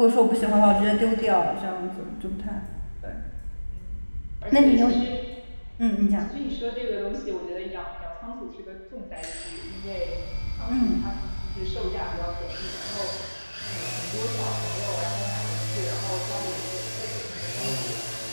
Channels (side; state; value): both; inverted; correlation -1.00